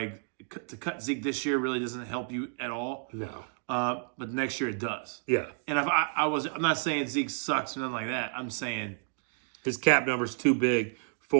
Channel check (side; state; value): left; silent; 57 dB below the other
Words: cut Zeke this year really doesn't help you at all. No. But next year it does. Yeah. And if I'm not saying Zeke sucks or nothing like that. I'm saying his cap number's too big